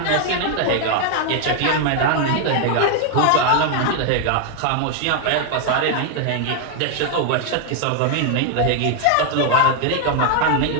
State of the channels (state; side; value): different; both; correlation 0.00